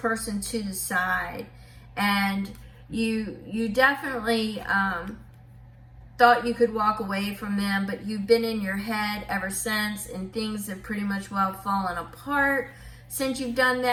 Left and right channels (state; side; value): identical; both; correlation 1.00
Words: to the side, and you definitely thought you could walk away from them, but you've been in your head ever since, and things have pretty much well fallen apart since you've done